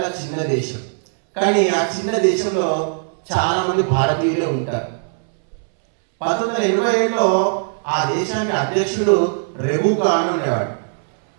చిన్న దేశం, కానీ ఆ చిన్న దేశంలో చాలా మంది భారతీయులే ఉంటారు. 1987లో ఆ దేశానికి అధ్యక్షుడు రెబుకా అని ఉండేవాడు.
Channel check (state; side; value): silent; left; 66 dB below the other